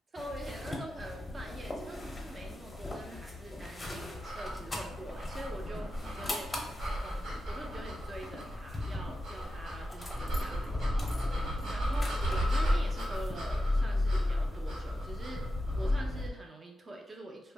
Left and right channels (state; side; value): normal; both; correlation 0.91